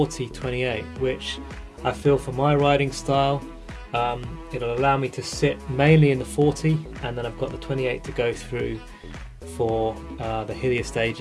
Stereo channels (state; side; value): identical; both; correlation 1.00